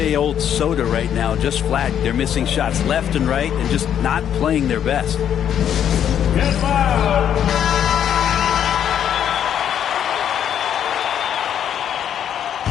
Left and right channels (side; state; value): right; quieter; 9.4 dB